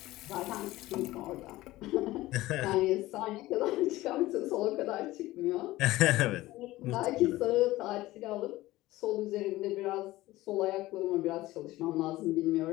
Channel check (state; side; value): quieter; right; 17.5 dB